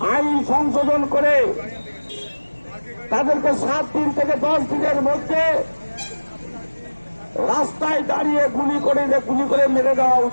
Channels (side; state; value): both; inverted; correlation -1.00